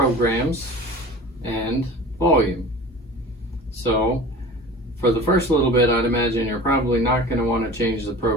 and volume. So for the first little bit, I'd imagine you're probably not going to want to change the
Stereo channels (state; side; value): normal; both; correlation 0.38